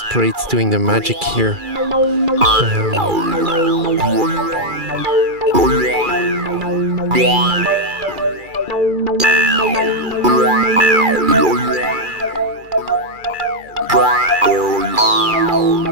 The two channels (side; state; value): left; late; 2.4 ms